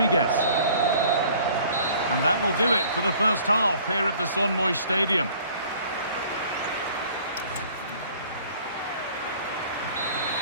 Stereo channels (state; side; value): inverted; both; correlation -0.52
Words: And that will do it for the first half here at the Son Moix Stadium.